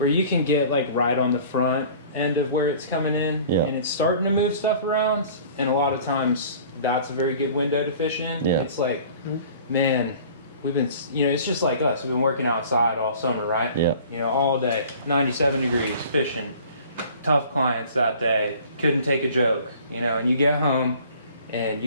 you can get like right on the front end of where it's coming in, Yeah. and it's starting to move stuff around. And a lot of times that's a very good window to fish in. Yeah. It's like, man, we've been, you know, it's just like us. We've been working outside all summer, right? Yeah. You know, all day, 97 degrees, fishing, tough clients that day, couldn't take a joke, you know, and you get home and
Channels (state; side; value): inverted; both; correlation -0.47